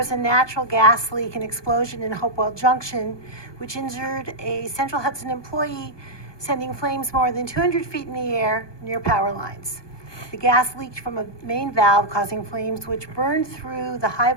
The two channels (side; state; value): right; late; 1.2 ms